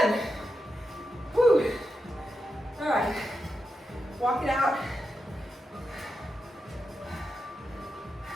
Whew. All right, walk it out.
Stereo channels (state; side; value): normal; both; correlation 0.87